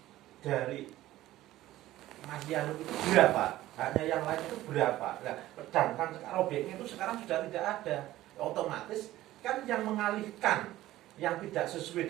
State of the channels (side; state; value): left; quieter; 15.4 dB